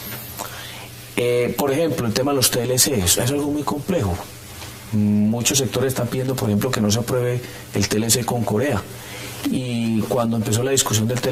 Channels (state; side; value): identical; both; correlation 1.00